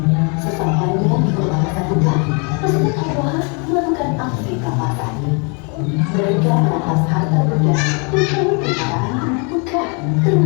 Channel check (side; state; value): right; quieter; 34.8 dB